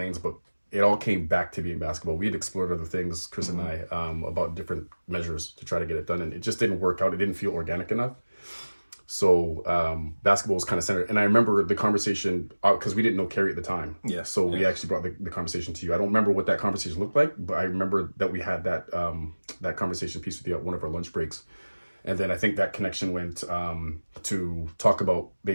but it all came back to being basketball. We had explored other things, Chris and I, about different measures to try to get it done. And it just didn't work out. It didn't feel organic enough. So basketball was kind of centered. And I remember the conversation, because we didn't know Carrie at the time. Yeah. So we actually brought the conversation to you. I don't remember what that conversation looked like, but I remember that we had that that conversation piece with you at one of our lunch breaks. And then I think that connection went to talk about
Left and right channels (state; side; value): inverted; both; correlation -1.00